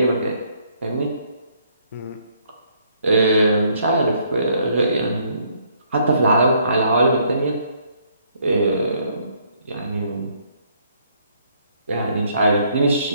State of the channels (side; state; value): both; inverted; correlation -0.68